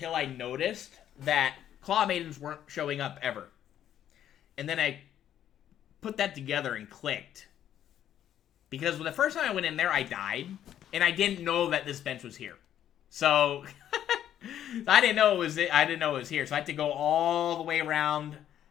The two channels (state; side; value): quieter; right; 10.8 dB